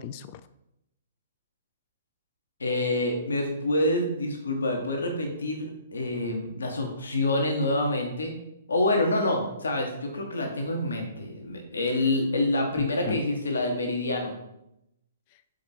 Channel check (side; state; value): both; inverted; correlation -0.59